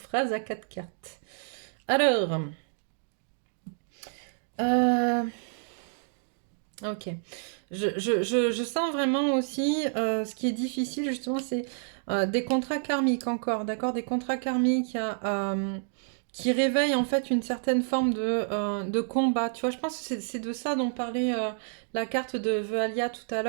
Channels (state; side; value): silent; left; digital silence